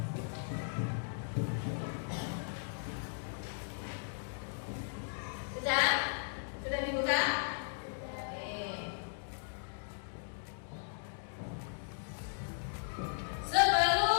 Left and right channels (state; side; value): silent; right; digital silence